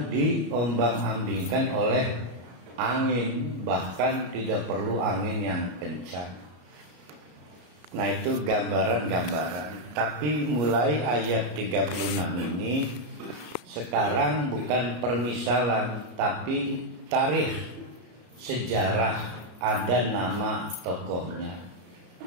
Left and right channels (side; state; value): left; late; 33 ms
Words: diombang-ambingkan oleh angin, bahkan tidak perlu angin yang kencang. Nah, itu gambaran-gambaran. Tapi mulai ayat 36 ini sekarang bukan permisalan, tapi tarikh, sejarah. Ada nama tokohnya,